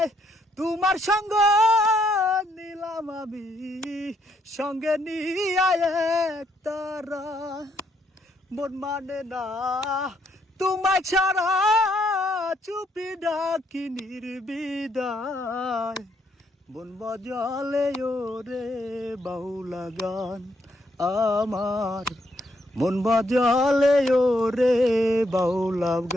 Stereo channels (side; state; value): both; normal; correlation 0.74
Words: তোমার সঙ্গ নিলাম আমি সঙ্গে নিয়ে এক তারা। মন মানে না তোমায় ছাড়া, চুপি ডাকি নির্বিদায়। মন বাজালে ওরে বাউলা গান আমার, মন বাজালে ওরে বাউলা